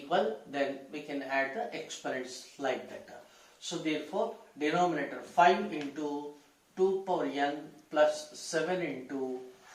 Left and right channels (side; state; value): both; identical; correlation 1.00